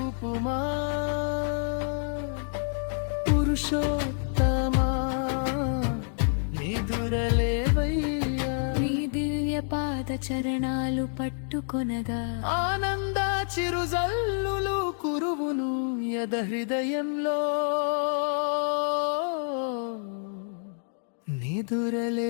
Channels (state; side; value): silent; right; digital silence